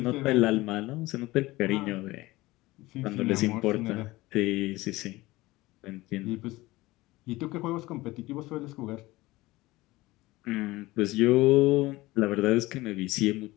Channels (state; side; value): quieter; right; 19.4 dB